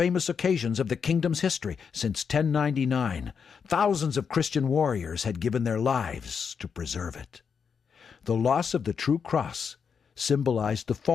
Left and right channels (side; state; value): right; quieter; 6.4 dB